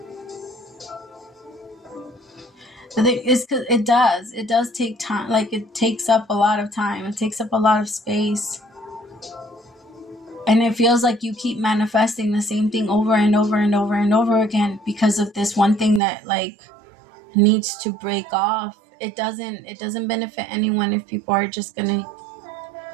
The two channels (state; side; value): drops out; left; at 16.0 s